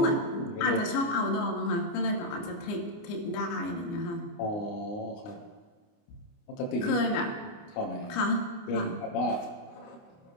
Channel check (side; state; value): right; late; 29 ms